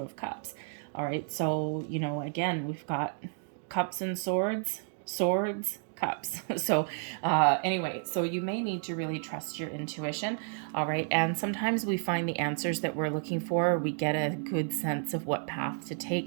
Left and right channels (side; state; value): left; silent; 57 dB below the other